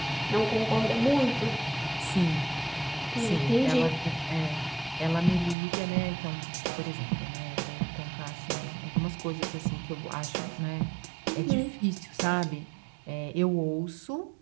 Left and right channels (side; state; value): left; drops out; at 5.6 s